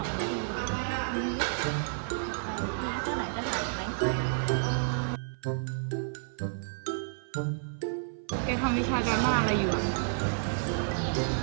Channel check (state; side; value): silent; left; 57 dB below the other